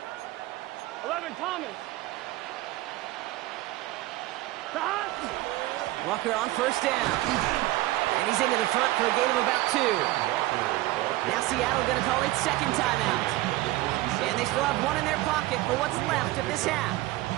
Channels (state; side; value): quieter; left; 17.9 dB